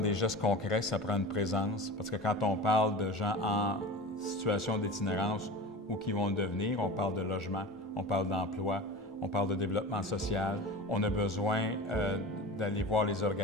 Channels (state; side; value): normal; both; correlation 0.31